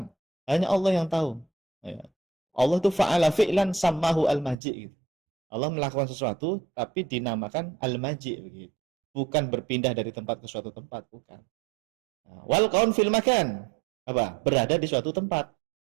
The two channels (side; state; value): left; drops out; at 4.5 s